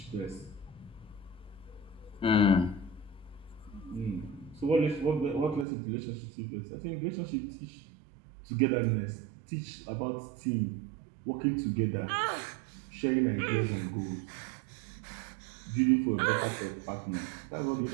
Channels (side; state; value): left; drops out; at 5.7 s